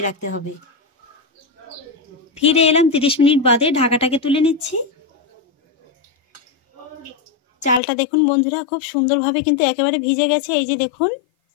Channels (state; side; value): drops out; right; at 7.8 s